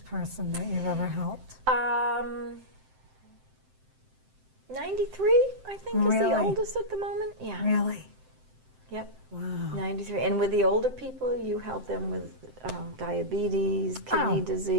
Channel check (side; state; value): left; late; 7.7 ms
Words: person that you've ever helped? 93, I think, is the Really? oldest at the moment. Yeah. Really? Yep. Wow. 93. And with the older people, you help them with diabetes, kidney